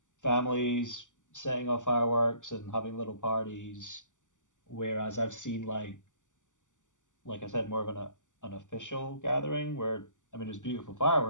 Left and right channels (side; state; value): right; late; 0.86 ms